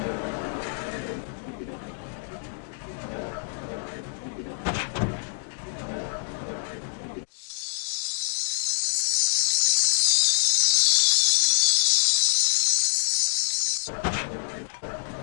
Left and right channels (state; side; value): silent; right; digital silence